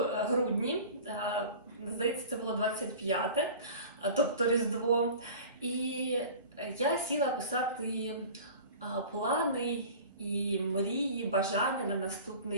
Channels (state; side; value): inverted; both; correlation -0.40